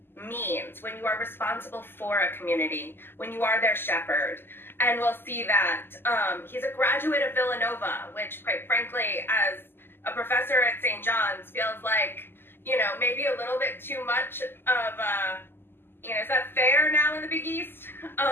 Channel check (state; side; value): late; right; 0.10 ms